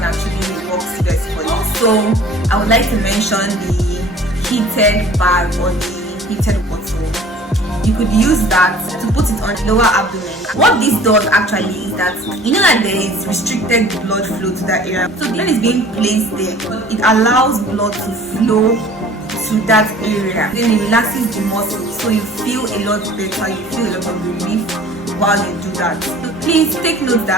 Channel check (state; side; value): normal; both; correlation 0.48